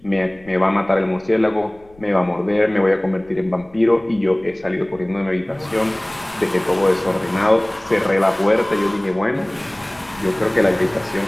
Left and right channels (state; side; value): noise; left; rumble, 27 dB below the sound